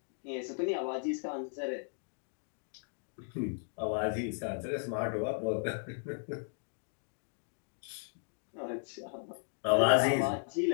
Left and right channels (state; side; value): silent; right; digital silence